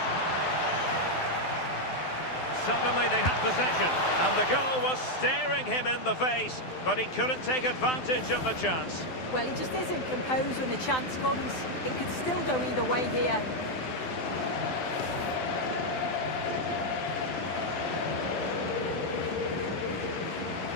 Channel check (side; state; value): right; late; 12 ms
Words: Suddenly they have possession, and the goal was staring him in the face, but he couldn't take advantage of the chance. Well, he just isn't composed when the chance comes. It could still go either way here.